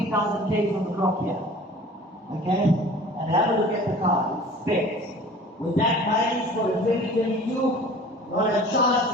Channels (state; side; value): normal; both; correlation 0.44